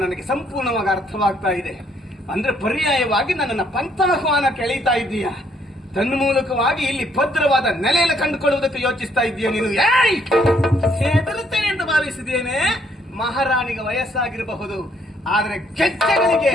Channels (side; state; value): both; normal; correlation 0.68